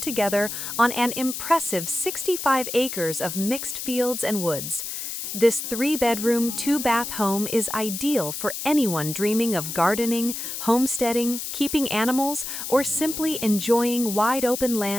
on an impressive 65 acres of mixed fields and woods. This 3-bedroom, 2-bath home is ideal for anyone dreaming of gardening, homesteading, keeping animals, or simply enjoying wide-open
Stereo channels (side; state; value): left; noise; hiss, 6 dB below the sound